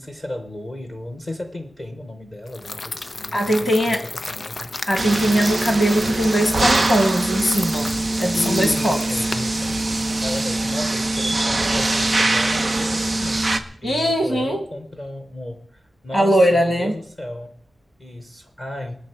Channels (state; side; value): normal; both; correlation 0.93